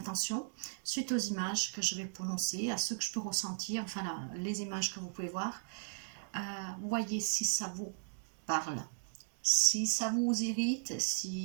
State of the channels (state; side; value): silent; left; digital silence